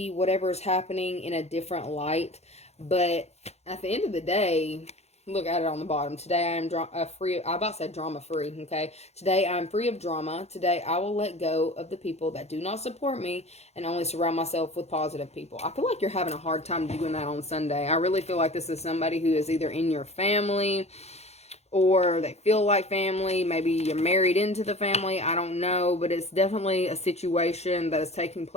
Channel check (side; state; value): right; late; 0.31 ms